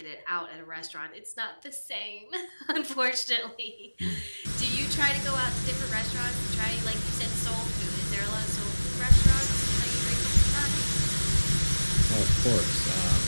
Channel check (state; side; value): inverted; both; correlation -1.00